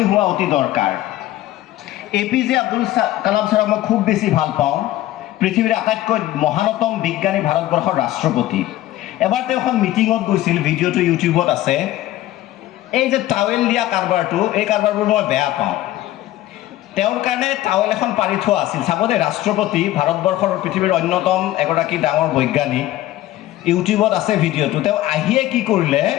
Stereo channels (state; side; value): quieter; right; 14.9 dB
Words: হোৱা অতি দৰকাৰ APJ আব্দুল কালাম ছাৰক মই খুব বেছি ভাল পাওঁ পৃথিৱীৰ আটাইতকৈ মহানতম বিজ্ঞানী ভাৰতবৰ্ষৰ ৰাষ্ট্ৰপতি এবাৰ তেওঁ এখন মিটিঙত গৈছিল ভিডিঅ'টো ইউটিউবত আছে এই যে টাৱেল দিয়া কাৰবাৰটো এই কাৰবাৰবোৰ মই বেয়া পাওঁ তেওঁৰ কাৰণে টাৱেল এখন পাৰি থোৱা আছিল চাব দেই ৰাষ্ট্ৰপতি ভাৰতবৰ্ষৰ পৃথিৱীৰ অন্যতম এগৰাকী ডাঙৰ বৈজ্ঞানিক ইউটিউবত আছে ভিডিঅ'টো তেওঁ আহিয়ে কি কৰিলে